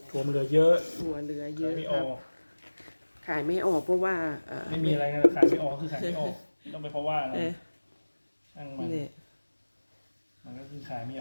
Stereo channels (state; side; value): inverted; both; correlation -1.00